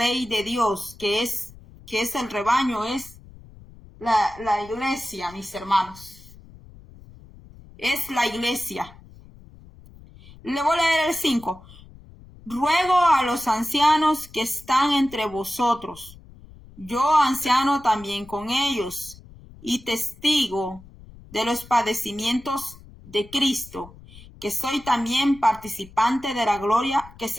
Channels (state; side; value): noise; left; rumble, 21 dB below the sound